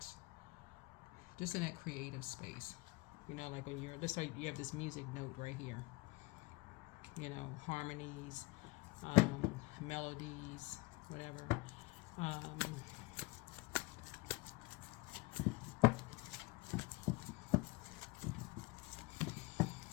just in that creative space. Like when you're just like you have this music note right here. Harmonies, melodies, whatever.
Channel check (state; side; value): quieter; right; 23.3 dB